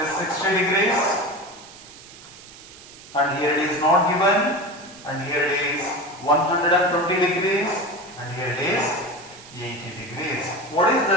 is 60 degrees and here it is not given and here it is 120 degrees and here it is 80 degrees. What is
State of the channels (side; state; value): right; noise; hiss, 19 dB below the sound